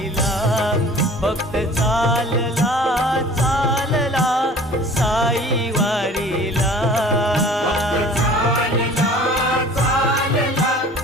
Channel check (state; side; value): normal; both; correlation 0.46